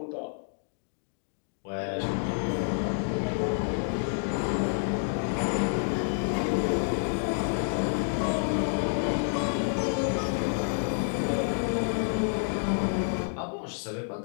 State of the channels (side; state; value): right; silent; digital silence